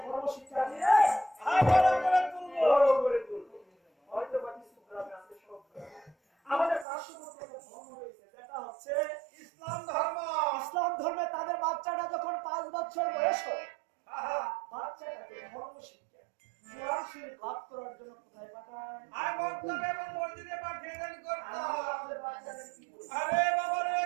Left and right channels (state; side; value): drops out; left; at 6.9 s